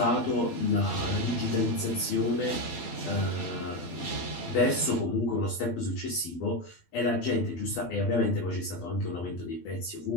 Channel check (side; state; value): right; late; 12 ms